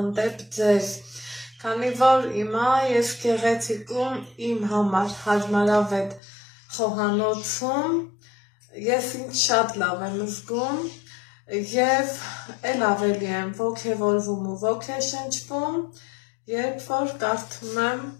ձեզ, քանի որ հիմա ես գեղեցիկում իմ համար հարմարավետ խոհանոցում, ես ինձ շատ լավ եմ զգում, և էլ ավելի եմ ոգևորվում ու ոգեշնչվում, երբ որ կարդում եմ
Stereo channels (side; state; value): right; drops out; at 6.2 s